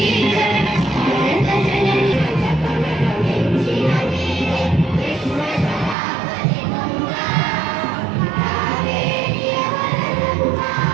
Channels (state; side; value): drops out; left; at 6.0 s